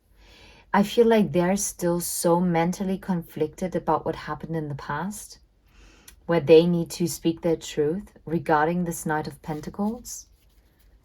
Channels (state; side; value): identical; both; correlation 1.00